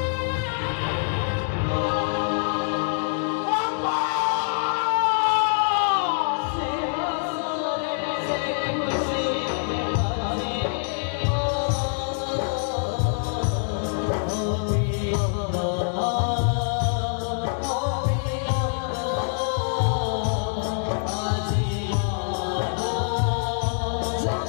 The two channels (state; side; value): silent; right; digital silence